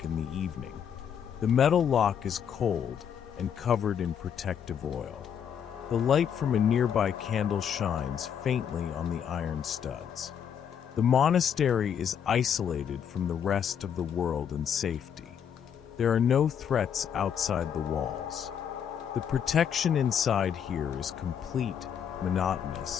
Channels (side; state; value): right; quieter; 8.2 dB